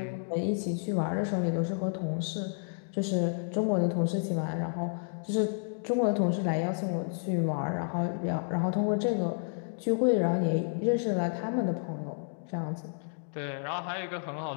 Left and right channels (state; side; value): silent; right; digital silence